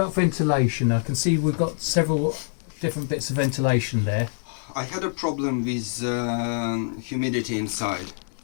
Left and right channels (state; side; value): silent; right; digital silence